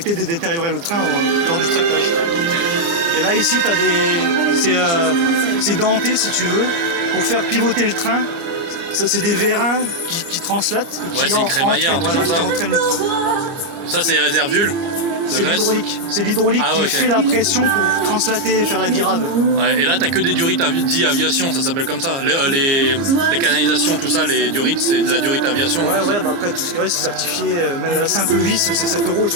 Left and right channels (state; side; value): late; left; 30 ms